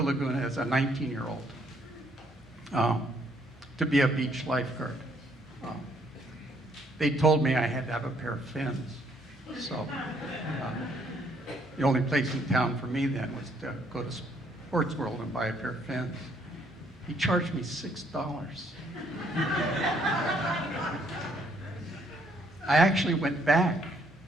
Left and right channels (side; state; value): both; normal; correlation 0.68